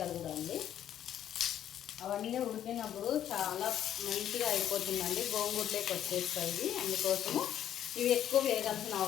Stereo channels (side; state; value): right; quieter; 10.6 dB